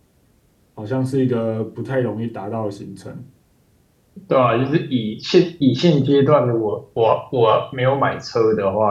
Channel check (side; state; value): both; identical; correlation 1.00